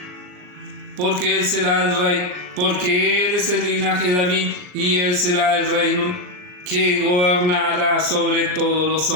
porque él será el rey, porque él es el linaje de David y él será el reino que gobernará sobre todos los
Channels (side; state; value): left; late; 39 ms